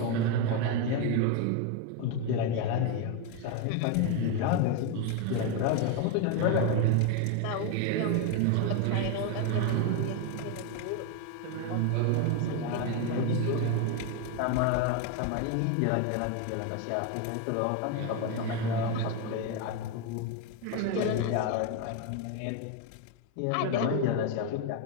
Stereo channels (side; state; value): both; different; correlation 0.02